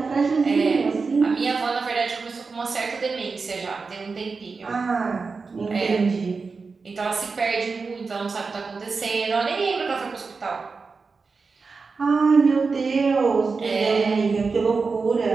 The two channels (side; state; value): left; quieter; 4.5 dB